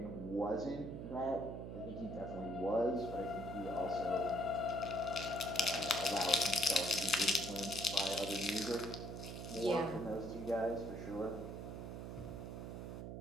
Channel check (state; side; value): noise; right; hum, 7 dB below the sound